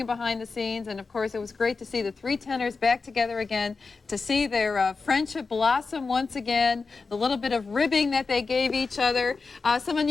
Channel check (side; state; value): right; quieter; 4.4 dB